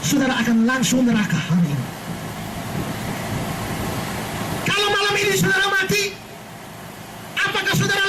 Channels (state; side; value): identical; both; correlation 1.00